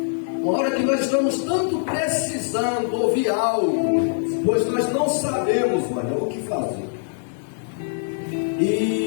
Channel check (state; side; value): silent; right; digital silence